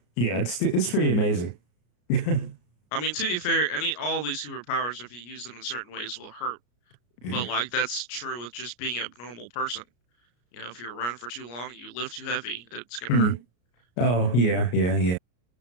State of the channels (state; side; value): late; right; 33 ms